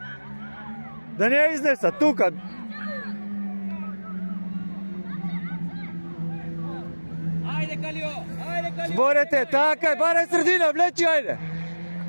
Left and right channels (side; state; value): both; inverted; correlation -1.00